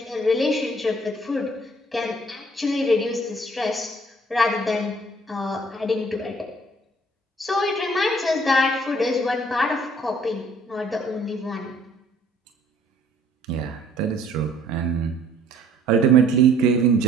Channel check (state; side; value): normal; both; correlation 0.58